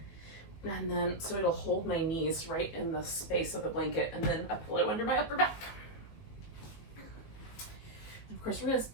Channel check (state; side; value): late; right; 19 ms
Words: and then so it'll hold my knees right in the space of the blanket, and then a pillow under my upper back. And of course, we're going